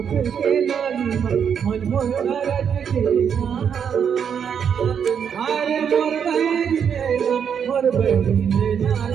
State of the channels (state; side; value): quieter; left; 7.6 dB